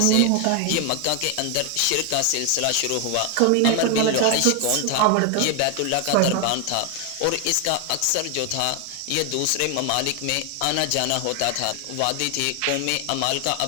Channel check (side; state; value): both; different; correlation 0.00